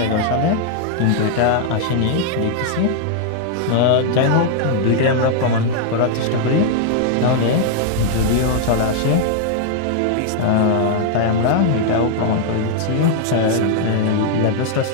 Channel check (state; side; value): different; both; correlation 0.00